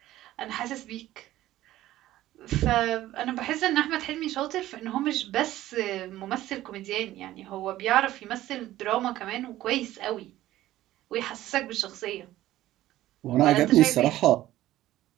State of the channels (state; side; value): quieter; left; 14.8 dB